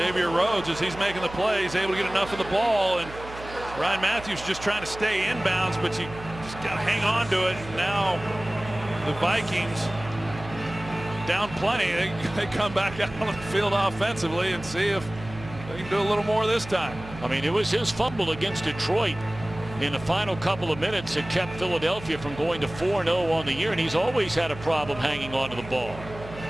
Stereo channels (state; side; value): noise; right; hum, 14 dB below the sound